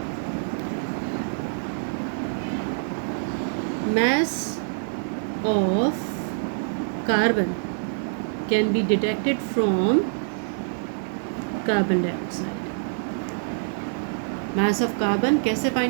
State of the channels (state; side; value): silent; left; digital silence